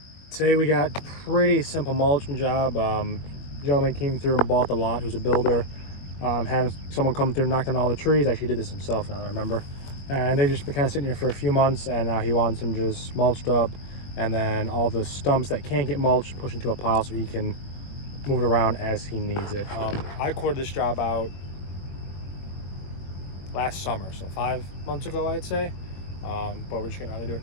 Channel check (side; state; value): right; late; 21 ms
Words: Today we got pretty simple mulching job. Gentleman came through and bought the lot, who's a builder. Had someone come through and knocked down all the trees. Actually did this himself, now I remember. And they've just been kind of sitting here for a few months, and now he wants them just mulched up, and then all the stumps that can't get mulched pushed into a pile so he can move it around as he needs it. I quoted this job out last summer, so 5 months ago I'd say, but we're just gonna rather do